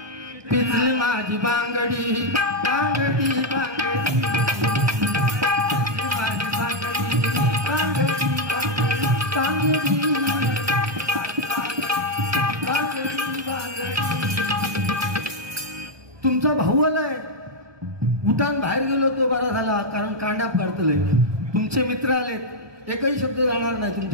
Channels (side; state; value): left; late; 1.2 ms